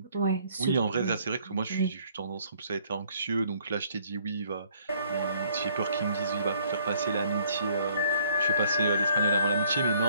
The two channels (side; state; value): both; inverted; correlation -0.62